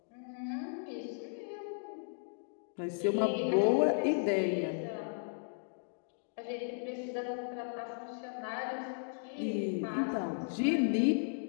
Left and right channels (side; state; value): right; silent; digital silence